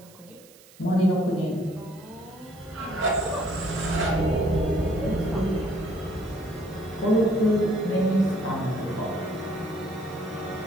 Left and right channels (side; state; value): right; noise; hiss, 24 dB below the sound